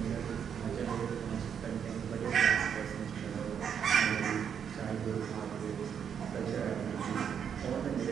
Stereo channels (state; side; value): quieter; left; 7.9 dB